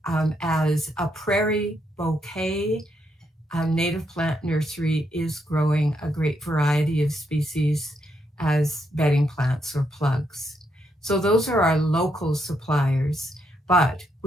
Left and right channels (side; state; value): both; normal; correlation 0.78